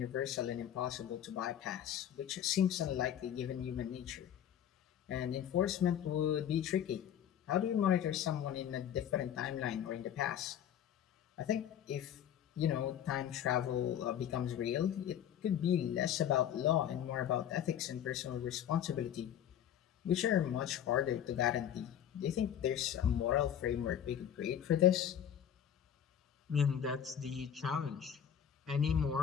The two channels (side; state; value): right; quieter; 9.7 dB